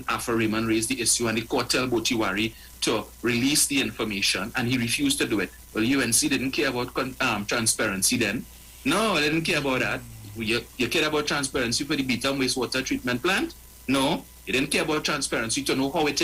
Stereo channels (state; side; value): identical; both; correlation 1.00